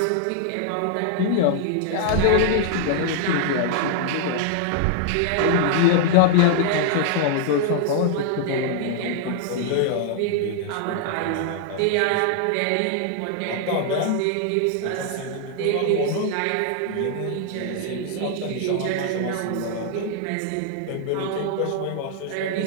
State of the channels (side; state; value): both; different; correlation -0.01